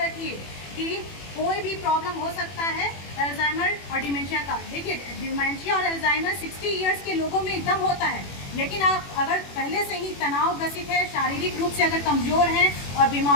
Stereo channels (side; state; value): right; late; 21 ms